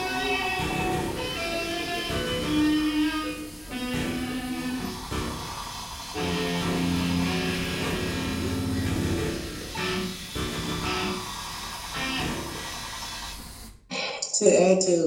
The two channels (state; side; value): identical; both; correlation 1.00